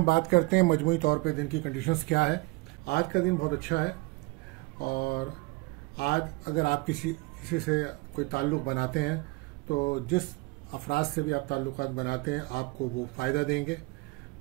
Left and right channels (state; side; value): quieter; left; 24.7 dB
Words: बात करते हैं मजमूई तौर पे दिन की कंडीशंस क्या है। आज का दिन बहुत अच्छा है और आज अगर आप किसी से कोई ताल्लुक़ बनाते हैं तो जिस अफराद से भी आप ताल्लुक़ात बनाते हैं आपको वो फ़ायदा देंगे।